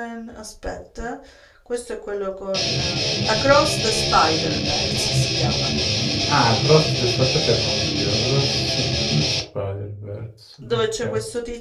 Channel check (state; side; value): identical; both; correlation 1.00